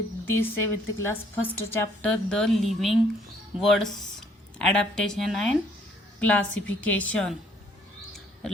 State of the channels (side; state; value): both; normal; correlation 0.63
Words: this 7th class first chapter the living words adaptation and classification.